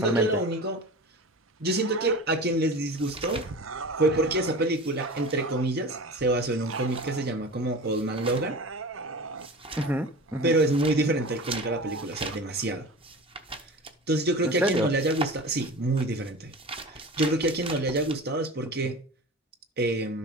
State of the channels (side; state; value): both; normal; correlation 0.34